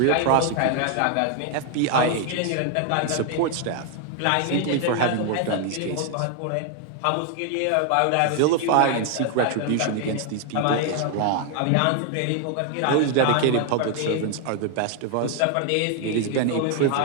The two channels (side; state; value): both; different; correlation 0.00